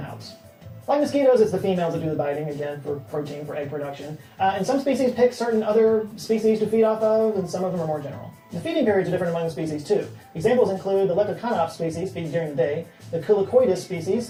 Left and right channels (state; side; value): identical; both; correlation 1.00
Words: Like mosquitoes, it's the females that do the biting, again, for protein, for egg production. And some species pick certain other species to feed off of, and some of them are more general. The feeding periods are different among the species, too. Examples include the Leptoconops species feeds during the day, the Culicoidus species